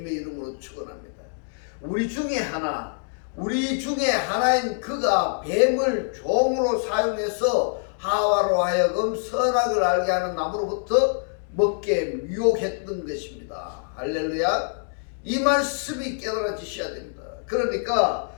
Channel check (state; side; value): silent; right; digital silence